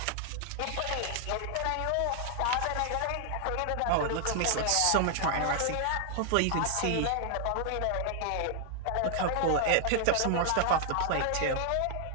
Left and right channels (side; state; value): both; different; correlation 0.00